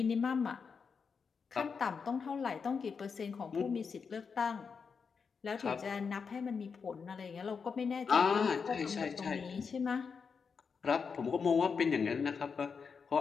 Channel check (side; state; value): right; quieter; 5.7 dB